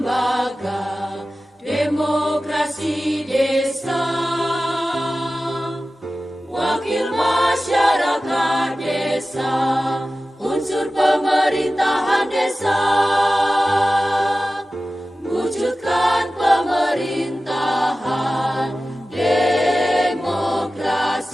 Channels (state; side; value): normal; both; correlation 0.95